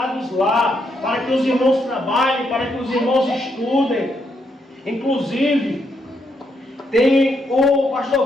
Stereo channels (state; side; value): normal; both; correlation 0.77